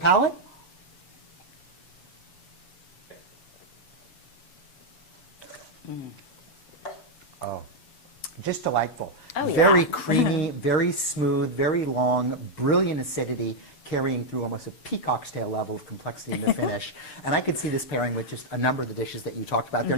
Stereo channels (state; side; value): late; right; 7.0 ms